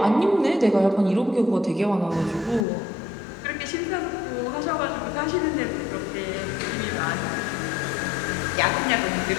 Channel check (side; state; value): right; drops out; at 2.7 s